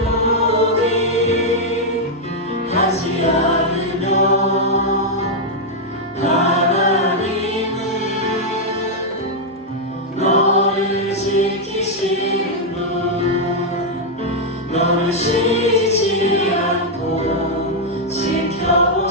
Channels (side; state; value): both; normal; correlation -0.02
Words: 않으며. 하나님은 너를 지키시는 분, 너를 쉬지 않고